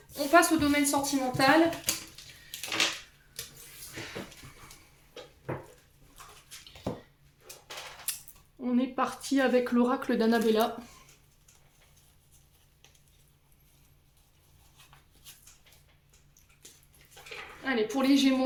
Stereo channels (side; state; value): both; identical; correlation 1.00